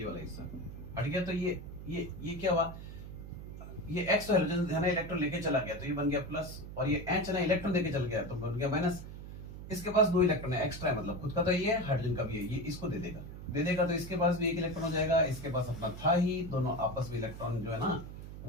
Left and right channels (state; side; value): noise; right; hum, 11 dB below the sound